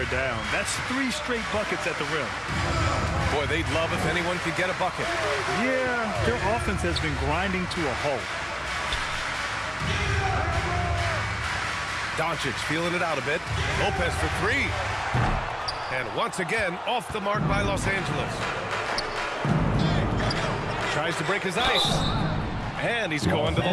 down. That's 3 straight buckets at the rim. Boy, they'd love if anyone could get a bucket. Yeah, their offense has been grinding to a halt. Doncic feeling it out a bit. Lopez for 3. And once again, off the mark by Los Angeles. Tries to break his ice. And he's going to the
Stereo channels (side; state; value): both; identical; correlation 1.00